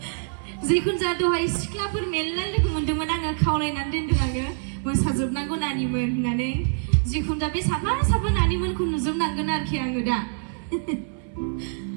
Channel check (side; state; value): left; silent; digital silence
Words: जिखुनु जा दहाय सिख्लाफोर मेरला लोगो मोनदोंमोन आङो खावलायनानै दोनदों आङो मोसाजोबनांगौ नानिमोन होननानै जिखुनु जा बे साफा नानिमोनखौ नुजोबनांगोन आरोखि आङो दा